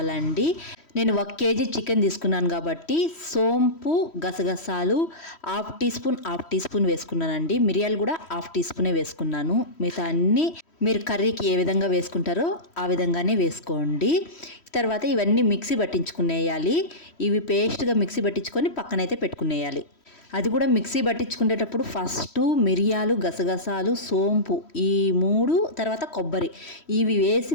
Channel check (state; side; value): late; right; 3.1 ms